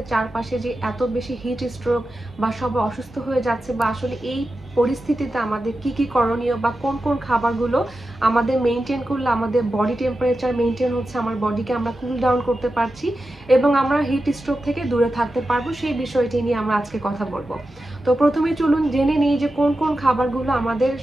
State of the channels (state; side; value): normal; both; correlation 0.91